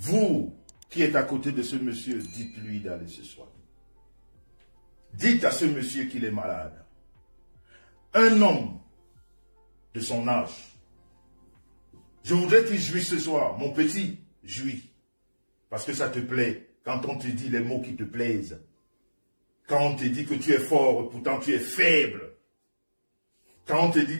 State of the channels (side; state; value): both; inverted; correlation -1.00